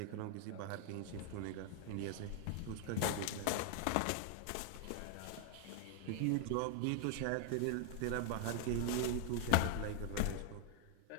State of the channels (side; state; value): both; different; correlation 0.00